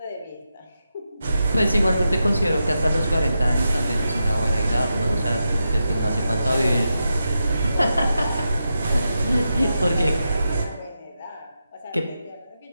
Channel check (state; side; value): inverted; both; correlation -0.88